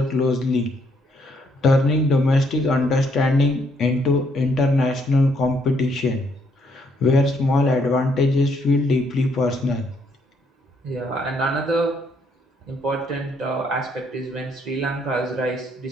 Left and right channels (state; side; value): normal; both; correlation 0.71